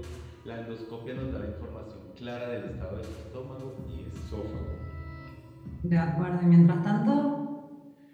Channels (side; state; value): both; identical; correlation 1.00